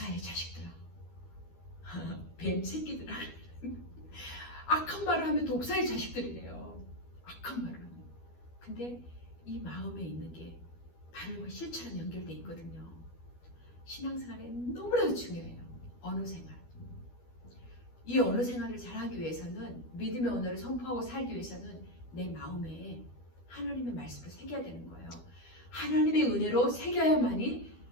자식들아, 뱀 새끼들아, 악한 말을 하면 독사의 자식들이래요. 악한 말을 하면. 근데 이 마음에 있는 게 바로 실체랑 연결되어 있거든요. 신앙생활에 너무나도 중요해요. 언어 생활. 이 언어 생활을 잘하기 위해서는 믿음의 언어를 선포하고 살기 위해서는 내 마음에 하나님의 말씀을 새겨야 되는 거예요. 하나님의 은혜로 새겨야만이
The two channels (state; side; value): late; right; 12 ms